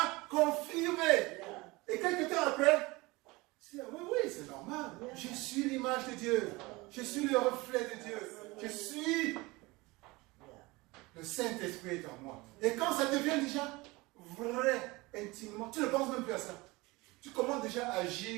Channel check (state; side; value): quieter; left; 22.8 dB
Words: confirmer. Et quelques temps après, tu dis, oui, c'est normal. Je suis l'image de Dieu. Je suis le reflet de Dieu. Je suis... Le Saint-Esprit est en moi. Et quand ça devient déjà vrai, intimement, tu ne penses même plus à ça. Tu commences déjà à